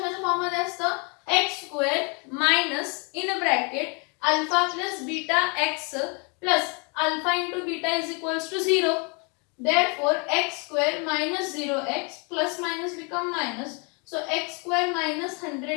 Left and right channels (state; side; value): quieter; right; 34.0 dB